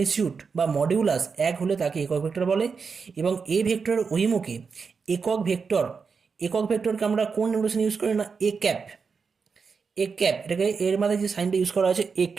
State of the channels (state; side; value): quieter; left; 5.4 dB